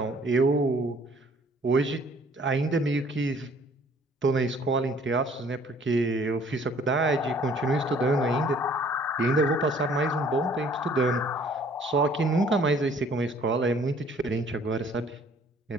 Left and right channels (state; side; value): normal; both; correlation 0.57